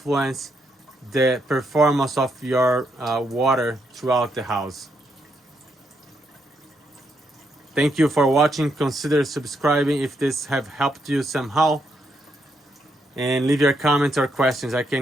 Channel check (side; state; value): both; normal; correlation 0.78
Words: the performance of your water throughout the house. Thank you for watching. Consider subscribing if this have helped you somehow, and leave your comments or questions. I